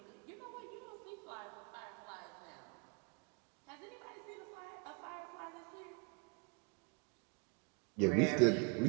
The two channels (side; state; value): left; quieter; 33.3 dB